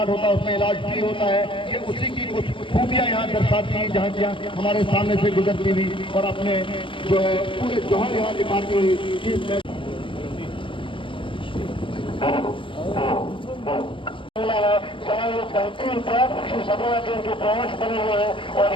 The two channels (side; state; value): right; late; 0.25 ms